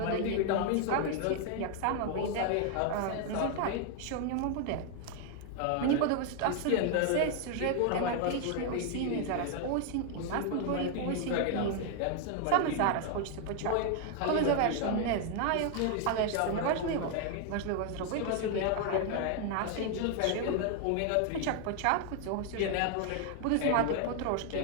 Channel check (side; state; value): both; different; correlation 0.00